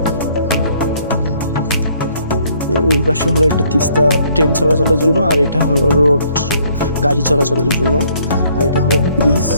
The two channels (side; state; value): both; inverted; correlation -0.64